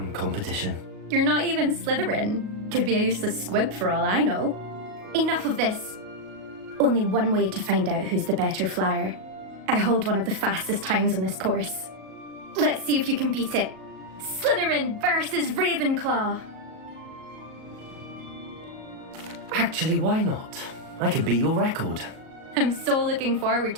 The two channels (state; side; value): late; left; 37 ms